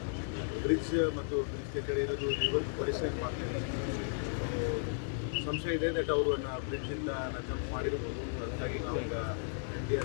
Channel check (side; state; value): right; silent; digital silence